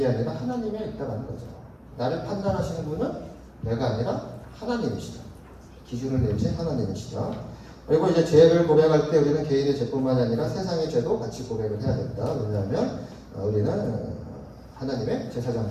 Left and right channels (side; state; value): both; identical; correlation 1.00